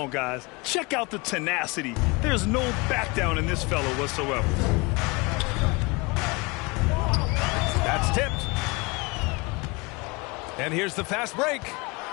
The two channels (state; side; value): quieter; right; 26.6 dB